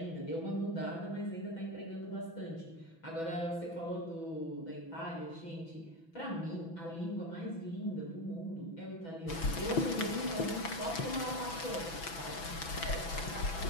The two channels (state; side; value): late; right; 6.0 ms